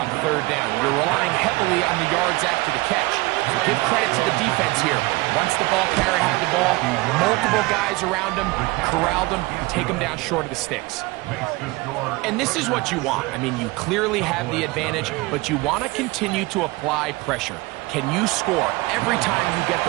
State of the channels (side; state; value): left; quieter; 22.7 dB